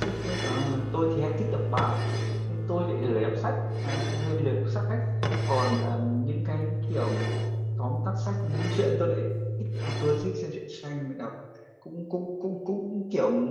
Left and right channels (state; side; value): identical; both; correlation 1.00